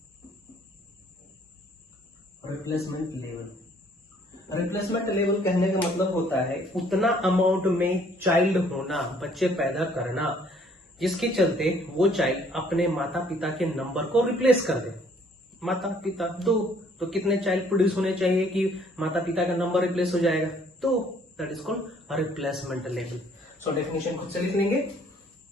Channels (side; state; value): both; normal; correlation 0.61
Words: रिप्लेसमेंट लेवल कहने का मतलब होता है उतना अमाउंट में चाइल्ड होना, बच्चे पैदा करना, जिसके चलते वो चाइल्ड अपने माता पिता के नंबर को रिप्लेस कर दे। माता पिता दो, तो कितने चाइल्ड प्रोड्यूस होने चाहिए कि माता पिता का नंबर रिप्लेस हो जाएगा, तो that is called replacement level. So definition खुद से लिख लेंगे,